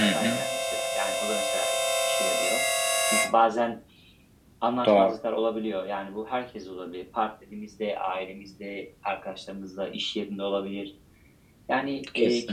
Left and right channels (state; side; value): identical; both; correlation 1.00